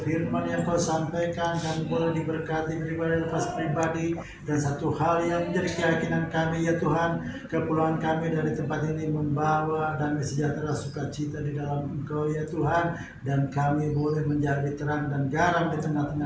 yang Kau sampaikan kami boleh diberkati pribadi lepas pribadi. Dan satu hal yang menjadi keyakinan kami ya Tuhan, kepulangan kami dari tempat ini membawa damai sejahtera sukacita di dalam Engkau ya Tuhan, dan kami boleh menjadi terang dan garam di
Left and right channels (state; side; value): identical; both; correlation 1.00